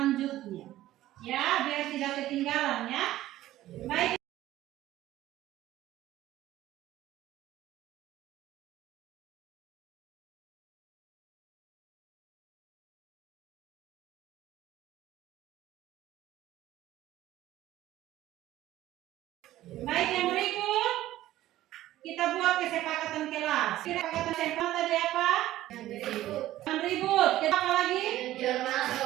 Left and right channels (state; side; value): quieter; left; 14.6 dB